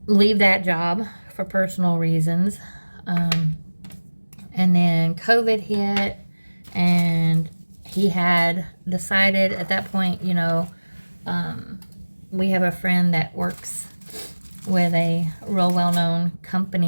leave that job for personal reasons. And then COVID hit, and he had decided at that point, you know, we have a friend that works with a real well-known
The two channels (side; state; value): both; inverted; correlation -1.00